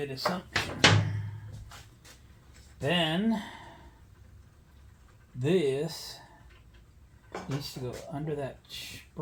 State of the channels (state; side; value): identical; both; correlation 1.00